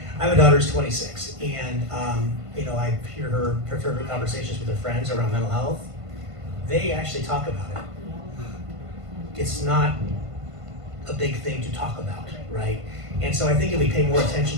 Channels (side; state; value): left; late; 1.5 ms